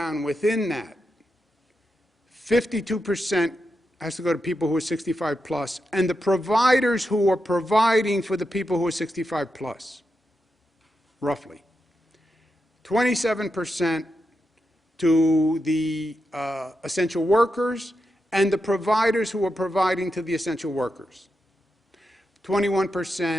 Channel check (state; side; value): normal; both; correlation 0.87